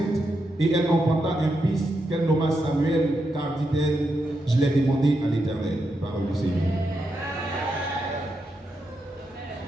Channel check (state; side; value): normal; both; correlation 0.84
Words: et elle enfanta un fils qu'elle nomma Samuel, car dit-elle, je l'ai demandé à l'Éternel. Parole du Seigneur.